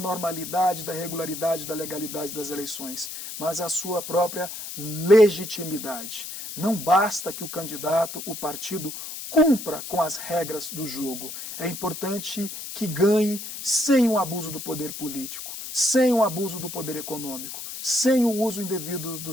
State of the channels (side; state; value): left; noise; hiss, 9 dB below the sound